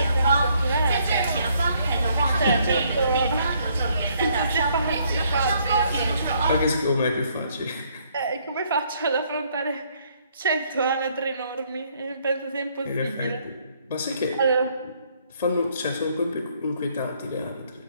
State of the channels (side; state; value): both; inverted; correlation -0.68